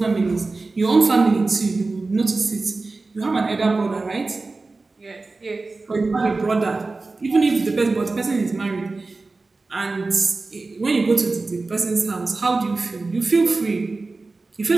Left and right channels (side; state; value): left; quieter; 3.6 dB